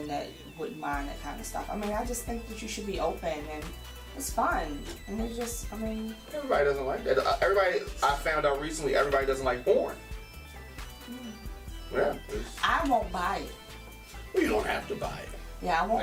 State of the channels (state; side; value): identical; both; correlation 1.00